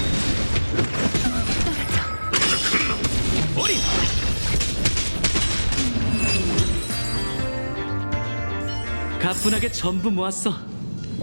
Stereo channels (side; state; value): both; inverted; correlation -1.00